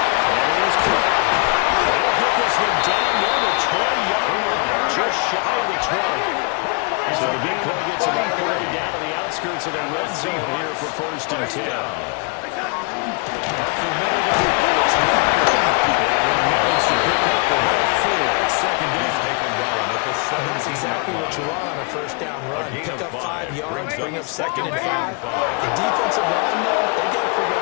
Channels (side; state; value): right; quieter; 33.5 dB